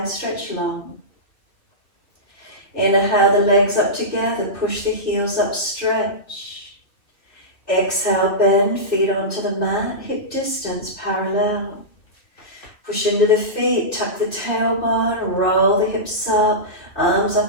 stretch long. Inhale the legs up together, push the heels up, stretch. Exhale, bend, feet onto the mat, hip distance parallel. Push into the feet, tuck the tailbone, roll the hips up, arms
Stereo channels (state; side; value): late; right; 2.4 ms